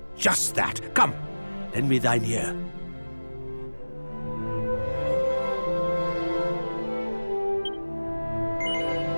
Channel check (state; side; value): inverted; both; correlation -1.00